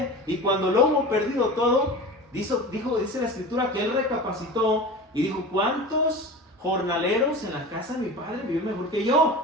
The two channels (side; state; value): both; normal; correlation 0.32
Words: y cuando lo hubo perdido todo, dice la escritura que él recapacitó y dijo: ¿cuántos jornaleros en la casa de mi padre viven mejor que